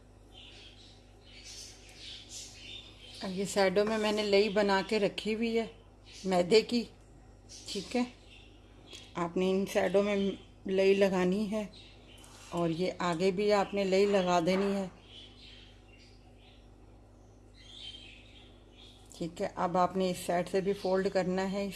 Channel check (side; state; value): both; identical; correlation 1.00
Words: अब ये साइडों में मैंने लई बना के रखी हुई है मैदे की। ठीक है, आपने इन साइडों में लई लगानी है और ये आगे भी आपने लई लगा देनी है। ठीक है, अब आपने इस साइड से भी फोल्ड करना है